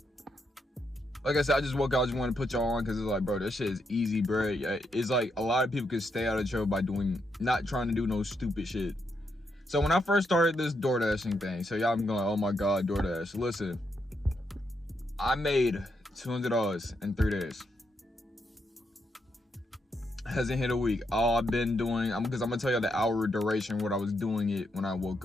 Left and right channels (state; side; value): normal; both; correlation 0.80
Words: Like I said, I just woke up, I just want to put y'all on because it's like, bro, this shit is easy, bro. It's like a lot of people can stay out of trouble by not trying to do no stupid shit. So when I first started this DoorDashing thing, so y'all going, oh my God, DoorDash. Listen, I made $200 in 3 days. Hasn't hit a week. All I've been doing, because I'm gonna tell y'all the hour duration what I was doing it when I woke